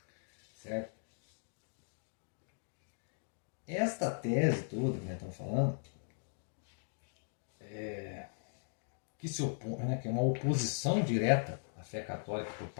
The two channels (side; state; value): right; silent; digital silence